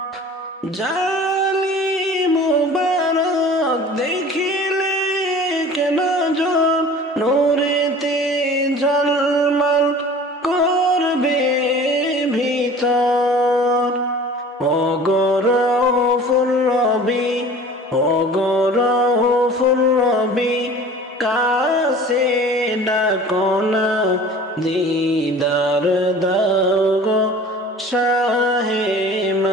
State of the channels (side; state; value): both; normal; correlation 0.43